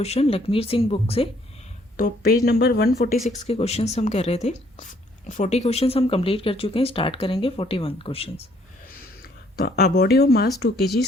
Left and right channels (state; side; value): normal; both; correlation 0.65